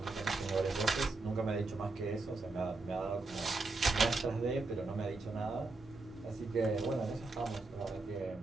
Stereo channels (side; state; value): left; quieter; 3.4 dB